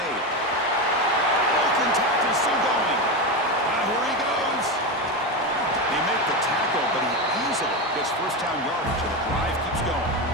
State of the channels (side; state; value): both; normal; correlation 0.16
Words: Broken tackle, still going. Here he goes. They make the tackle, but he easily gets first down yardage, and the drive keeps going.